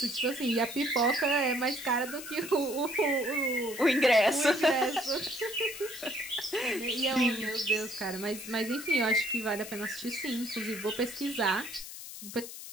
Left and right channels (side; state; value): left; noise; hiss, 11 dB below the sound